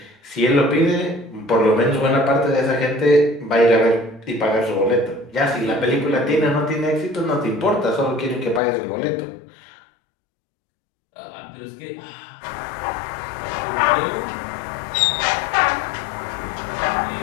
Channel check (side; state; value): right; drops out; at 8.6 s